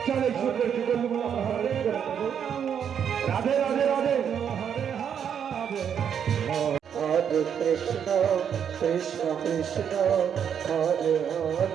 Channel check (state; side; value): quieter; left; 8.2 dB